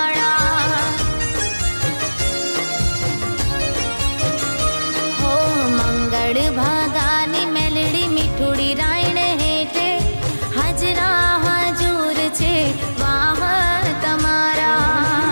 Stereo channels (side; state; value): both; inverted; correlation -1.00